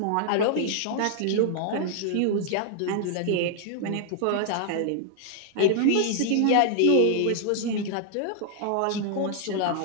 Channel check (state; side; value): different; both; correlation -0.01